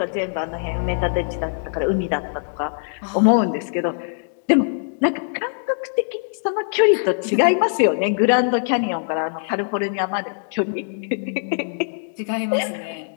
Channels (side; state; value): right; silent; digital silence